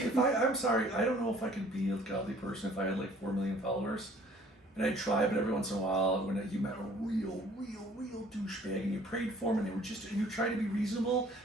if I'm sorry, I don't know if I could be a godly person if I had like 4 million followers. And I'd try, but every once in a while, when you met a real douchebag and you prayed for them and they were just, and you try to be reasonable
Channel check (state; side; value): normal; both; correlation 0.55